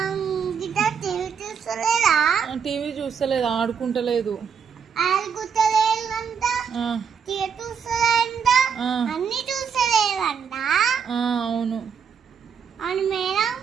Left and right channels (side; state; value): left; quieter; 6.8 dB